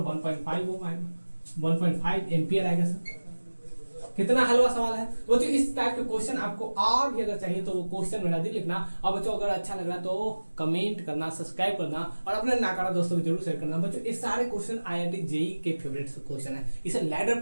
1.5 ओम आएगा, 1.5 एम्पियर आएगा सर। कितना हलवा सवाल है। तो बच्चों इस टाइप के क्वेश्चन आपको और भी अगर चाहिए तो वो क्वेश्चन मेरा दी लिखना। और बच्चों अगर अच्छा लग रहा तो कमेंट करना, सब्सक्राइब करना और अपने नाकारा दोस्तों को जरूर शेयर करना। बच्चों ये सारे क्वेश्चन आईआईटी जेई के फेवरेट क्वेश्चन है, इसे लैडर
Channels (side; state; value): both; inverted; correlation -1.00